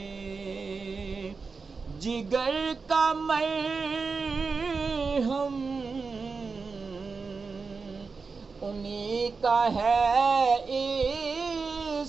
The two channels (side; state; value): left; quieter; 4.6 dB